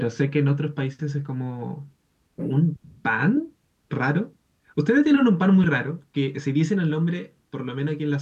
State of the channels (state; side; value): identical; both; correlation 1.00